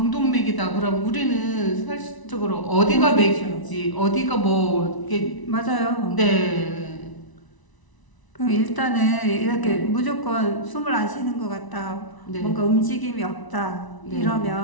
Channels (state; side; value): late; right; 1.0 ms